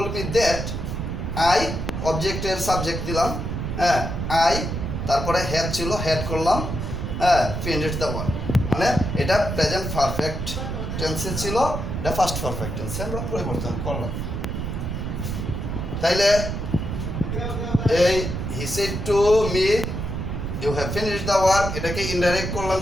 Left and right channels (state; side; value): noise; right; rumble, 4 dB below the sound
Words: মি দ্যাট আই, অবজেক্টের সাবজেক্ট দিলাম, হ্যাঁ আই, তারপরে হ্যাড ছিল, হ্যাড করলাম, হ্যাঁ ফিনিশড দ্য ওয়ার্ক। মানে এটা প্রেজেন্ট পারফেক্ট টেন্সে ছিল, এটা ফার্স্ট পারফেক্ট টেন্সে আমরা পরিবর্তন করলাম। তাইলে এই he said to me you have finished the work, এটাকে ইনডাইরেক্ট করলাম